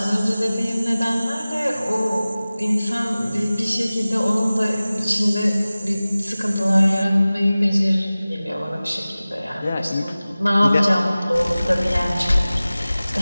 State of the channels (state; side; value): inverted; both; correlation -0.98